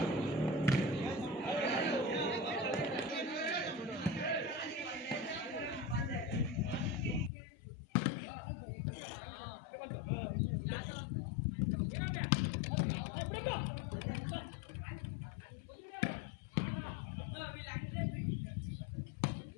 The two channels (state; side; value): drops out; right; at 7.3 s